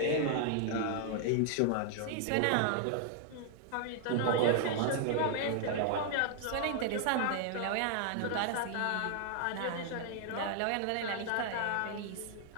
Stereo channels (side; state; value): both; different; correlation 0.00